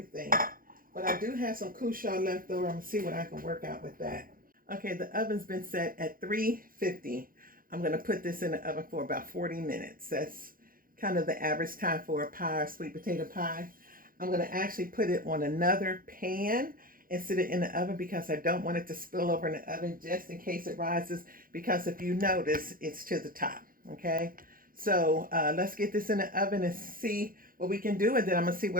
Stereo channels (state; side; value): late; left; 0.41 ms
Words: But I do have some Cushaw left over. I'm going to see what I can work out with that. Okay, the oven's been set at 350. I'm going to put this in the oven for about 40 minutes. That's kind of the average time for a pie, or sweet potato pie. I'm going to actually put it on another pan and sit it in the oven because I don't want it to spill over in the oven just in case it rises, because if you notice, it's to the top, okay? So let's get this in the oven and see what we can do, and then I'm going to see